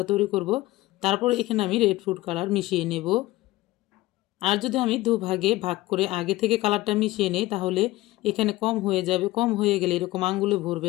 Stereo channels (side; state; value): right; quieter; 17.9 dB